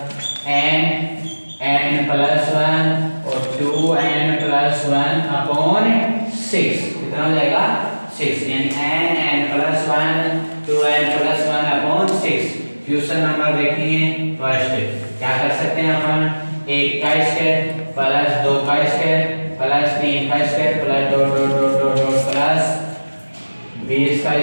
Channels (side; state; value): both; inverted; correlation -1.00